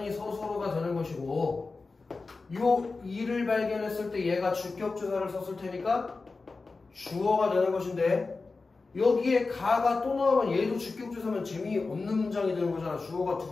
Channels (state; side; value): quieter; right; 3.9 dB